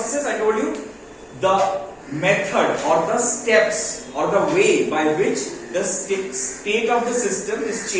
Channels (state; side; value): identical; both; correlation 1.00